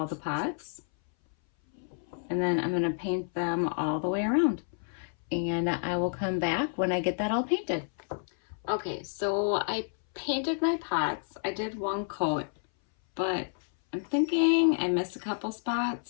the pots, and then I'm going to paint them all the way around. And I will come back when I get that all painted. Okay, so I painted my pots. I did one coat, but I'm thinking I missed a couple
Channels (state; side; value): silent; right; 58 dB below the other